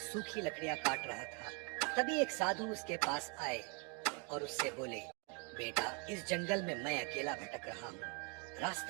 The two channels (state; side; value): quieter; left; 31.6 dB